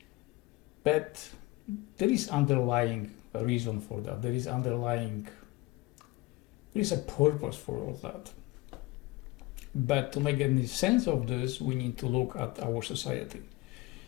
But there is underlying reason for that. There is a purpose for all that. But to make any sense of this, we need to look at our society.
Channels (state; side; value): quieter; right; 20.7 dB